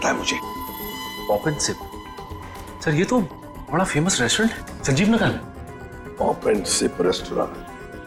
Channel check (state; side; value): identical; both; correlation 1.00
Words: है मुझे। Pop and SIP. सर ये तो बड़ा फेमस रेस्टोरेंट है, संजीव नगर में। Pop and sip